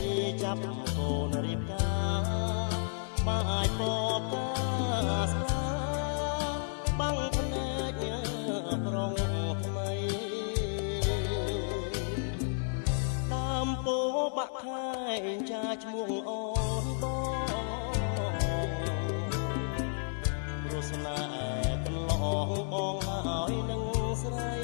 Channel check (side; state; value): right; silent; digital silence